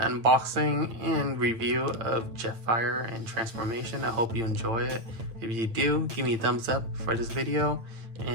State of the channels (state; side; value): late; left; 8.9 ms